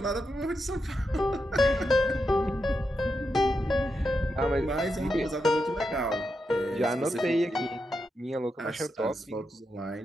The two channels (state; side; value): normal; both; correlation 0.86